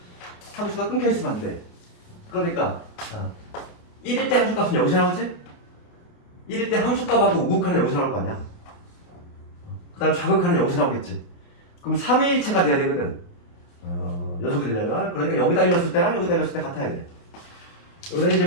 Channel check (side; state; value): right; late; 28 ms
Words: 함수가 끊겨 있으면 안 돼. 그러니까 1일 때 함수값은 여기서 나오지? 1일 때 함수값하고 우극하는 여기서 나올 거 아니야. 그 다음 좌극하는 여기서 나오겠지. 그럼 3일체가 돼야 되거든. 연속이 되려면. 그러니까 여기다 일렀을 때랑 여기다 일렀을 때 같아야 돼. 여기다